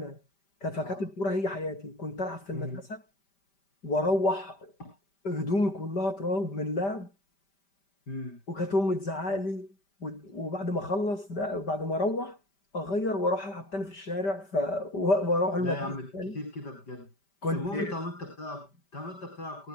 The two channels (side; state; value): right; late; 5.1 ms